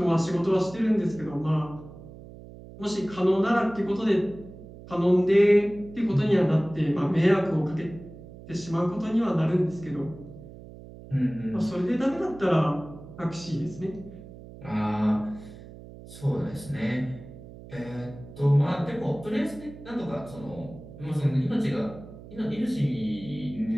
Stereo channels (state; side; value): noise; right; hum, 17 dB below the sound